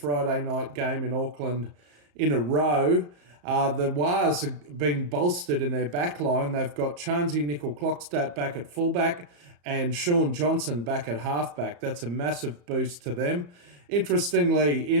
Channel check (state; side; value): late; left; 34 ms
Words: night game in Auckland in a row. The Wars have been bolstered in their back line. They've got Chansey Nickel-Clockstadt back at fullback and Sean Johnson back at halfback. That's a massive boost to them. Interestingly,